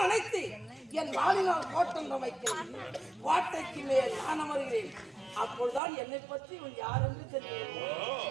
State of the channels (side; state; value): left; drops out; at 5.8 s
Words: அழைத்து என் வாளினால் கோட்டம் அமைக்கிறேன் கோட்டைக்கு மேல் நான் அமர்கிறேன் அப்பொழுதுதான் என்னை பற்றி இவன் யார் என்று தெரியும்